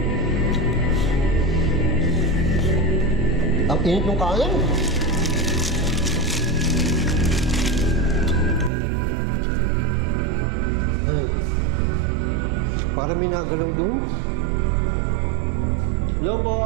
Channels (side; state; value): left; drops out; at 8.7 s